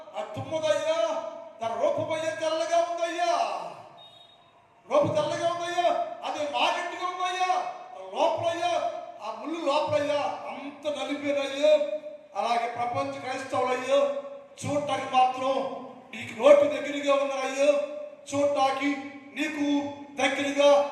తుమ్మదయ్యా, తన రూపమయ్యా తెల్లగా ఉందయ్యా, రూపు తెల్లగా ఉందయ్యా, అది మాగట్టిగా ఉందయ్యా, లోపలయ్యా ఆ ముళ్ళు లోపలయ్యా అంత నలిపేనయ్యా. అలాగే ప్రపంచ క్రైస్తవులయ్యా చూడటానికి మాత్రం నీకు నోటి దగ్గరగా ఉన్నారయ్యా, చూడటానికి నీకు దగ్గరగా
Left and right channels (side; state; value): both; identical; correlation 1.00